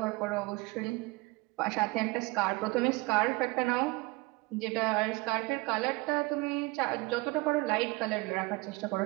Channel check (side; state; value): left; quieter; 23.5 dB